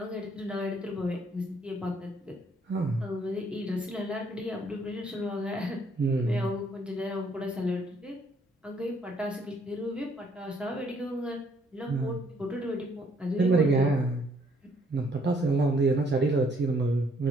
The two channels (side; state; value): both; normal; correlation 0.66